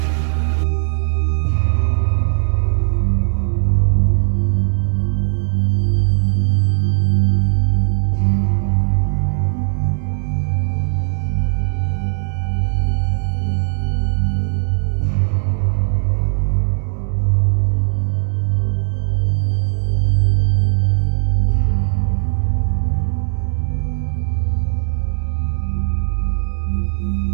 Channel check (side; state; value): left; silent; digital silence